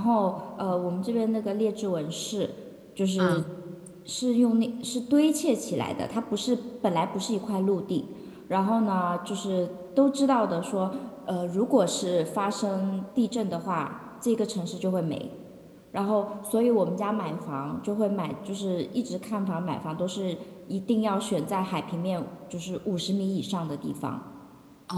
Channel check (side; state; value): both; identical; correlation 1.00